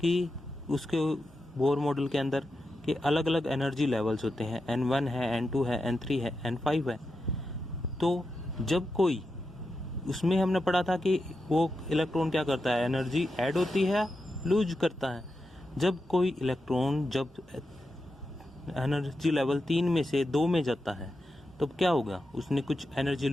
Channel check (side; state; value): both; normal; correlation 0.89